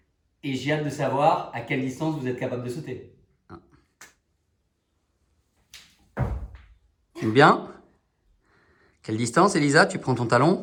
et j'ai hâte de savoir à quelle distance vous êtes capable de sauter. Bien. Quelle distance, Elisa? Tu prends ton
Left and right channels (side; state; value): both; identical; correlation 1.00